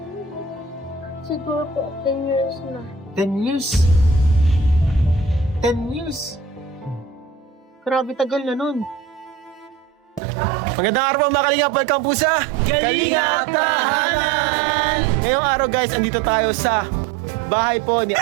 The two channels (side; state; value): left; drops out; at 10.2 s